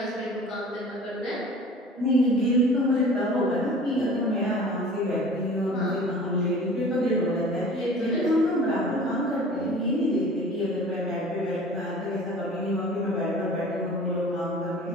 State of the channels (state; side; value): normal; both; correlation 0.44